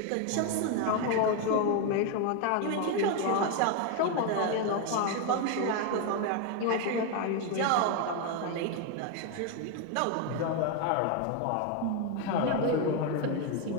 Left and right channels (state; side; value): different; both; correlation 0.01